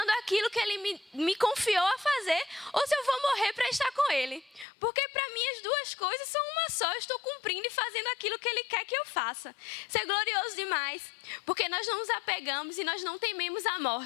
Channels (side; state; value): right; drops out; at 4.7 s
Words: aquilo que Ele me confiou a fazer, ou se eu vou morrer para estar com Ele. Porque para mim as duas coisas são uma só. Eu estou cumprindo e fazendo aquilo que Ele quer que eu faça. Isso é glorioso demais. Porque nós não nos apegamos e nós não tememos a